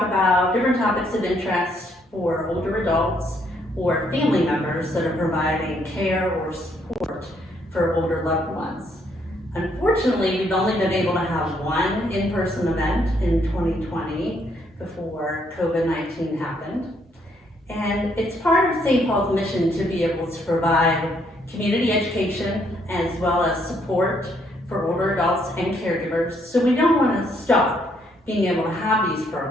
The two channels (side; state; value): both; normal; correlation 0.71